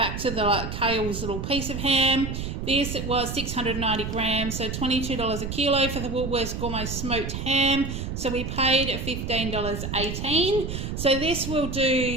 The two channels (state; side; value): noise; right; rumble, 5 dB below the sound